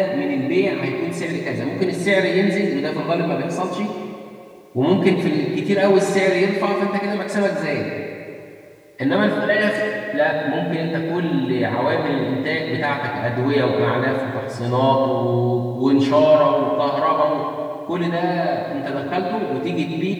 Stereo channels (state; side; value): identical; both; correlation 1.00